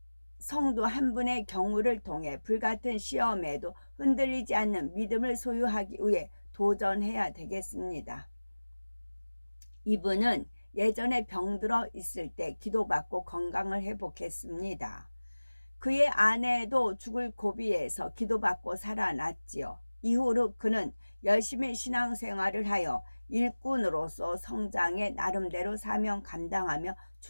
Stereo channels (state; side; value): inverted; both; correlation -1.00